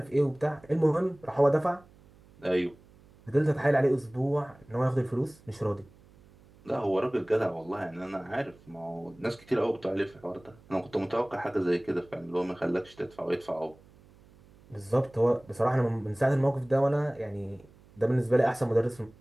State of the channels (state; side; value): noise; right; hum, 26 dB below the sound